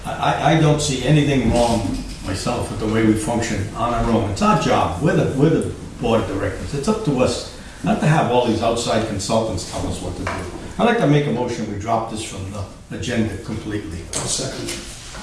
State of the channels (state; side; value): identical; both; correlation 1.00